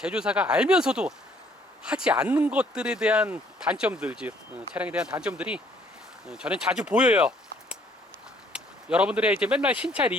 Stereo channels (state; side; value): normal; both; correlation 0.62